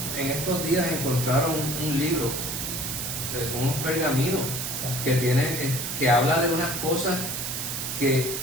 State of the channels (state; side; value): noise; right; hiss, 3 dB below the sound